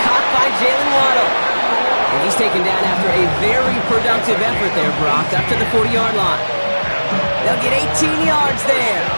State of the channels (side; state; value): both; inverted; correlation -1.00